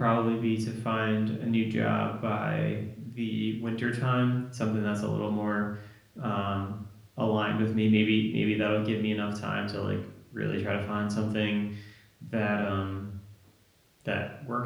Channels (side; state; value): both; identical; correlation 1.00